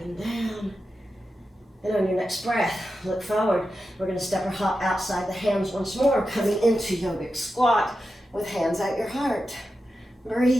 and down. And on your next breath, look forward. We're going to step or hop outside the hands once more, coming into yogic squat with hands at your heart.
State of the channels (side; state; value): both; normal; correlation 0.90